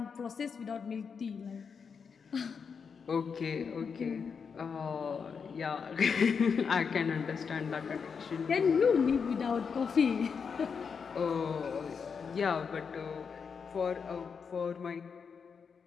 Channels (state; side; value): quieter; right; 6.0 dB